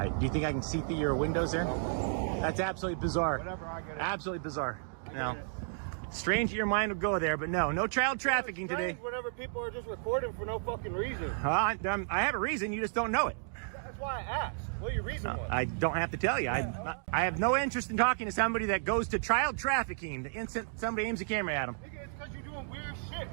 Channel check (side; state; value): left; silent; digital silence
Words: Do you think I can see through your windows there? That's absolutely bizarre. Whatever, I get it. Absolutely bizarre. I No. get it. Strange that your mind would go there, but no child trafficking today. Whenever people are just recording for no fucking reason. I have a reason, you just don't know it. That's why I asked. What your reason was? I don't have to tell you. I have no interest in talking to somebody that goes to child trafficking the instant somebody aims a camera at them. Nigga, it's because you're doing weird